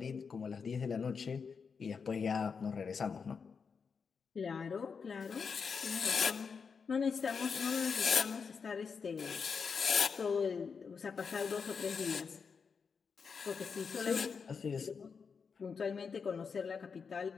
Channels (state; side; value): quieter; right; 5.7 dB